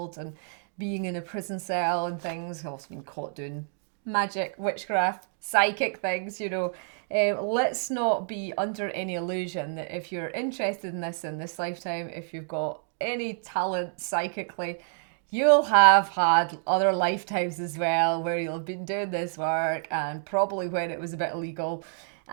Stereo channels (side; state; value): left; silent; digital silence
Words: and being in a prison cell and things. I've also been caught doing magic, witchcraft, psychic things, you know. Let's not be under any illusion that if you're interested in this lifetime, if you've got any talent psychically, you'll have had other lifetimes as well where you'll have been doing this work, and probably when it was a bit illegal.